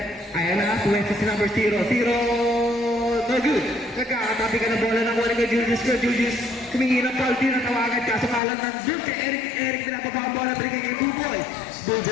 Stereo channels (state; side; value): drops out; right; at 8.4 s